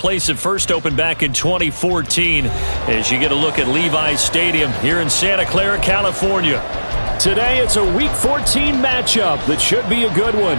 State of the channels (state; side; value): inverted; both; correlation -1.00